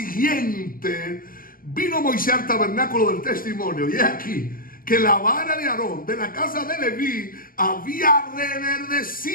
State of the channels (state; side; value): late; right; 0.41 ms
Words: vino Moisés al tabernáculo del testimonio. Y aquí que la vara de Aarón de la casa de Leví había